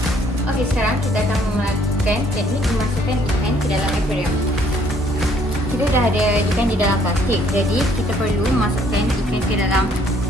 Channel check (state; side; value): normal; both; correlation 0.63